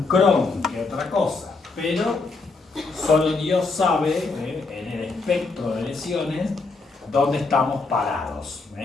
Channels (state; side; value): quieter; right; 3.9 dB